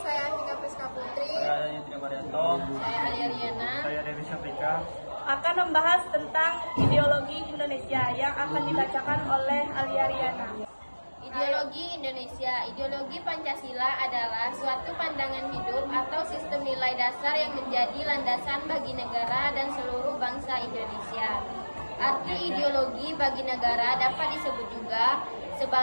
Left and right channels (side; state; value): both; inverted; correlation -1.00